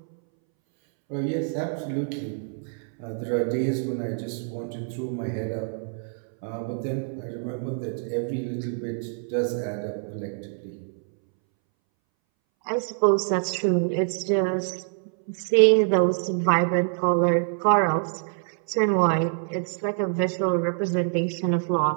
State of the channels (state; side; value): silent; left; 61 dB below the other